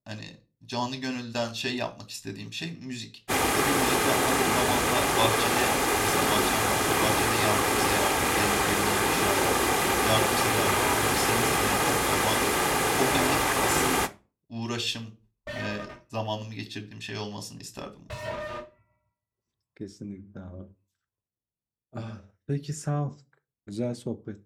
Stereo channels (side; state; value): both; identical; correlation 1.00